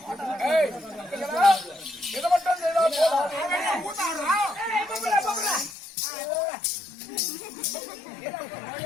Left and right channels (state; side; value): drops out; right; at 5.8 s